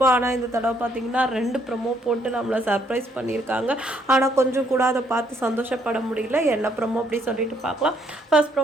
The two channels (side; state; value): both; normal; correlation 0.69